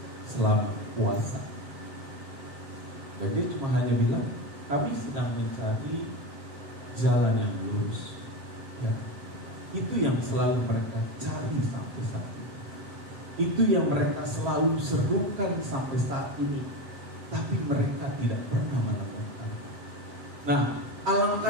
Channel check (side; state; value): left; late; 7.4 ms